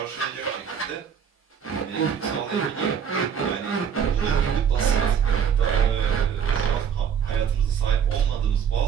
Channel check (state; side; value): quieter; left; 7.7 dB